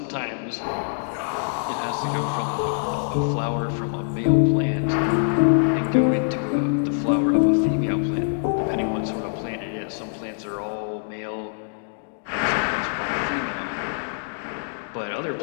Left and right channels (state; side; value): silent; right; digital silence